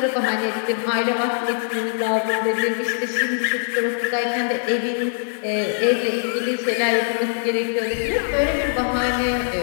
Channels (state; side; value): silent; right; 64 dB below the other